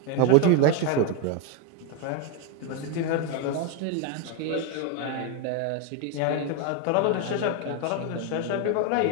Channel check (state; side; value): different; both; correlation 0.02